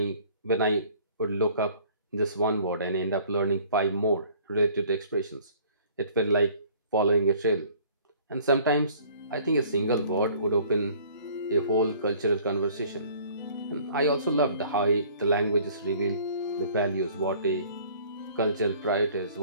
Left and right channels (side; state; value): both; inverted; correlation -0.53